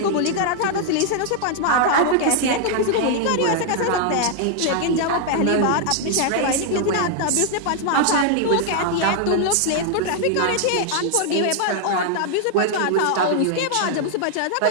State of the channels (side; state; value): both; different; correlation 0.00